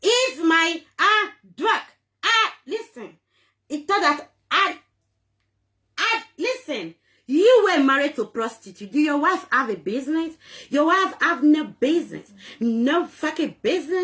It's my work. Listen. It thought that listen, you were married to a prostitute. Do your wife have a business? Your wife have no business. No fucking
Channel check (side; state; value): both; identical; correlation 1.00